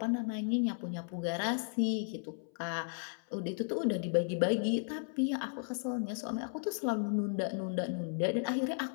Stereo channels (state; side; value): silent; right; 55 dB below the other